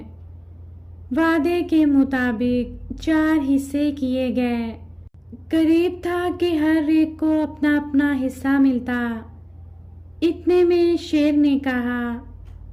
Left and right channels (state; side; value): identical; both; correlation 1.00